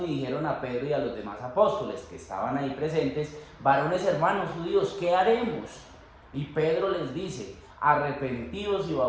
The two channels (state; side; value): identical; both; correlation 1.00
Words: y dijeron a Pedro y a los demás apóstoles que estaban ahí presentes, varones hermanos judíos, ¿qué haremos? Y Pedro les dice, arrepentidos y